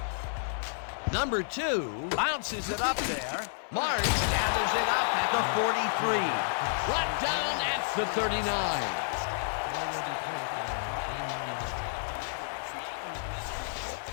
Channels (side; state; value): right; silent; digital silence